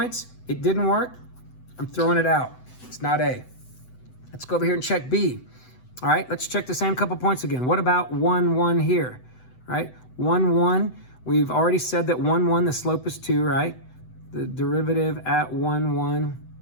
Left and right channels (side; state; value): right; late; 7.9 ms